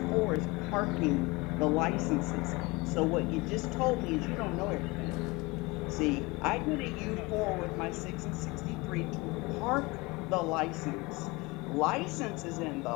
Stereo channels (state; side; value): quieter; right; 24.2 dB